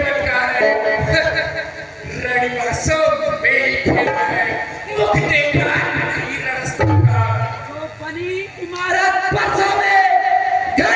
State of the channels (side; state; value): both; identical; correlation 1.00